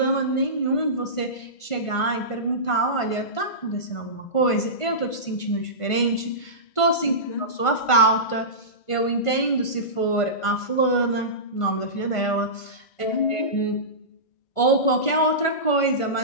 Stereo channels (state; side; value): late; right; 1.5 ms